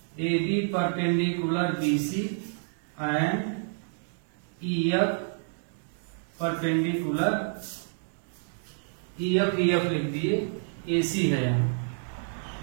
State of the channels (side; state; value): left; silent; digital silence